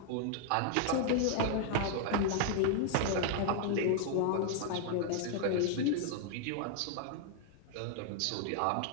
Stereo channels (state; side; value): different; both; correlation 0.00